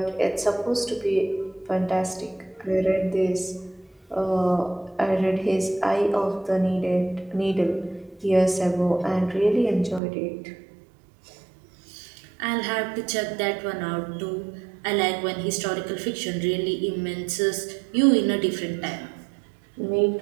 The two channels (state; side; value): drops out; left; at 10.0 s